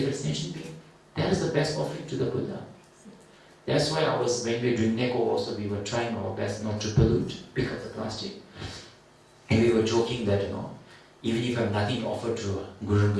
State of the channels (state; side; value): identical; both; correlation 1.00